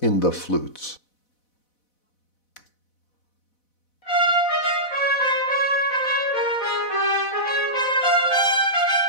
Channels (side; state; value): right; late; 4.0 ms